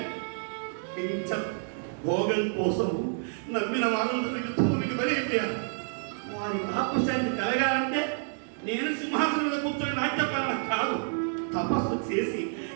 భోగం కోసం నమ్మిన వారందరూ యుద్ధములకు బలైపోయారు. వారి ఆపుశాన్ని కలగాలంటే నేను సింహాసనం మీద కూర్చొని రాజ్యపాలన కాదు, తపస్సు చేసి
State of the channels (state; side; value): silent; left; digital silence